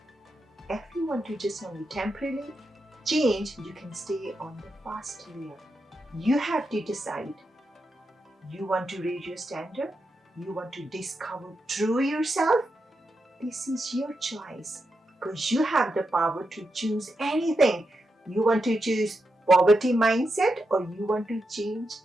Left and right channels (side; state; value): both; normal; correlation 0.86